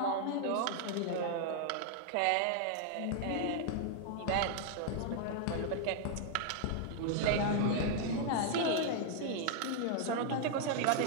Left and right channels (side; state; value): both; different; correlation -0.01